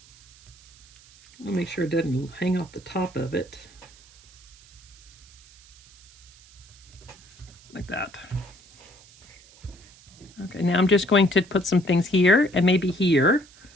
I'll make sure it doesn't hang off the top of it. Like that. Okay, now I'm just going to put some things here and maybe here.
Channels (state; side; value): noise; right; hiss, 24 dB below the sound